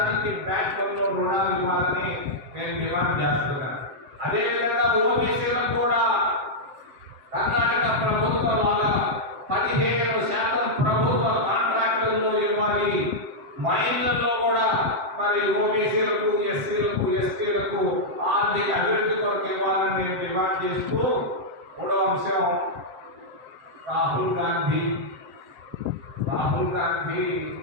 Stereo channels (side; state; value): left; late; 7.6 ms